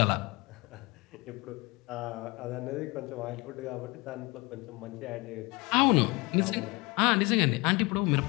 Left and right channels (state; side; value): quieter; right; 25.1 dB